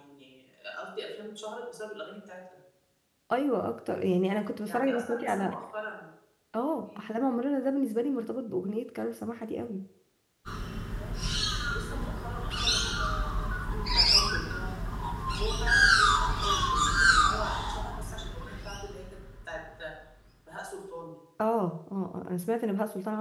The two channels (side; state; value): both; identical; correlation 1.00